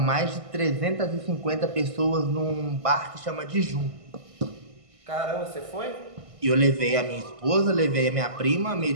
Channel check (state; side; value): late; left; 1.5 ms